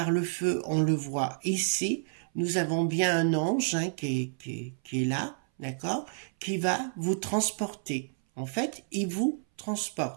le feu, on le voit ici. Nous avons bien un ange qui est là, d'accord, qui va vous transporter. En fait, il vous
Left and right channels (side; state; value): left; silent; 58 dB below the other